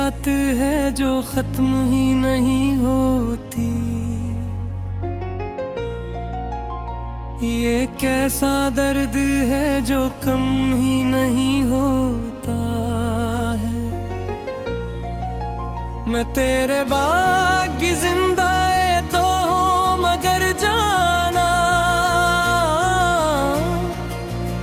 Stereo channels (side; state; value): both; identical; correlation 1.00